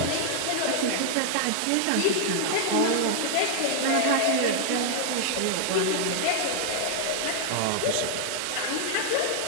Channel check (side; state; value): both; different; correlation 0.00